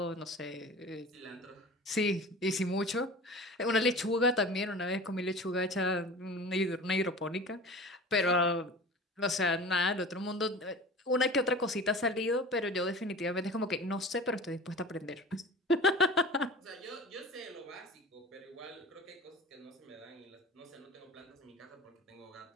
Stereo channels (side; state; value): both; normal; correlation 0.37